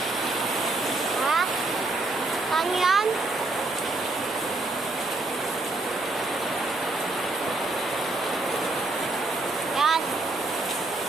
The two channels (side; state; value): left; quieter; 3.1 dB